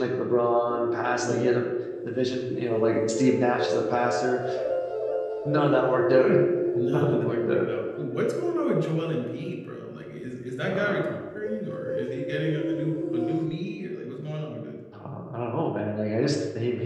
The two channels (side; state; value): both; identical; correlation 1.00